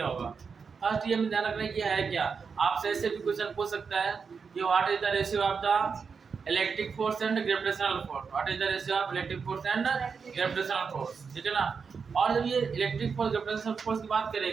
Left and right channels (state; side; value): quieter; left; 5.6 dB